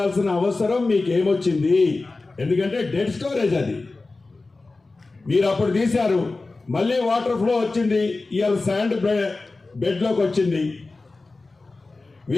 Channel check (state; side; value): quieter; right; 3.5 dB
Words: అవసరం మీకు ఏమొచ్చింది? ఎందుకంటే డెడ్ స్టోరేజ్ అది. మీరు అప్పుడు తీశారు, మళ్ళీ వాటర్ ఫ్లో వచ్చింది, ఇవాళ శాండ్ బెడ్లోకి వచ్చింది.